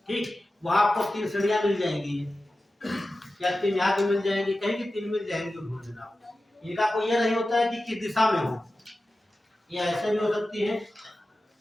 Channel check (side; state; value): both; normal; correlation 0.94